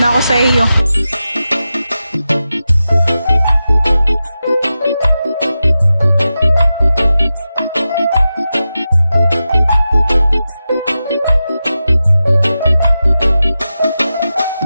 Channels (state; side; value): inverted; both; correlation -0.92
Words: ako sa iyo.